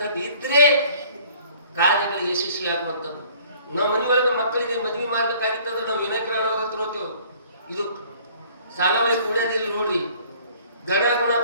ಇದ್ರೆ ಕಾರ್ಯಗಳು ಯಶಸ್ವಿ ಆಗುವಂಥದ್ದು. ನಾವು ಮನೆ ಒಳಗೆ ಮಕ್ಕಳಿಗೆ ಮದುವೆ ಮಾಡ್ಬೇಕಾಗಿತ್ತಂದ್ರೆ ನಾವು ವಿನಾಯಕರ ಹತ್ರ ಹೋಗ್ತೇವೆ. ಇದು ಸಾಲವಳಿ ಕೂಡ್ಯಾದಿಲ್ಲ ನೋಡ್ರಿ, ಗಣ ಗುಣ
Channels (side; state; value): both; inverted; correlation -0.54